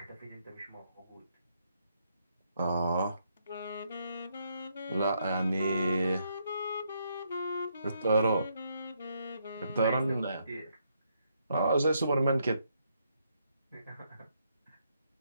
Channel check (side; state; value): both; inverted; correlation -0.75